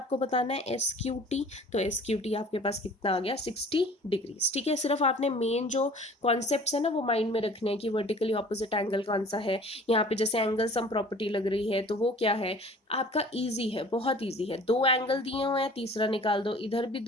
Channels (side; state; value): both; normal; correlation 0.48